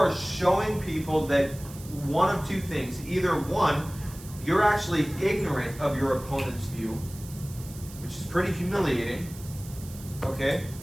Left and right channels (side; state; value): right; noise; hiss, 17 dB below the sound